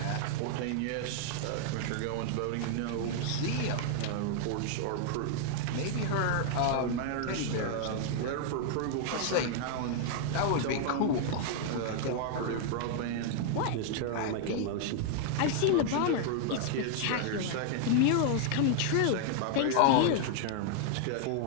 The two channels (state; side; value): different; both; correlation 0.00